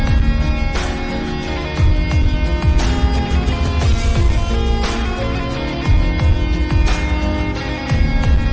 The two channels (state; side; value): identical; both; correlation 1.00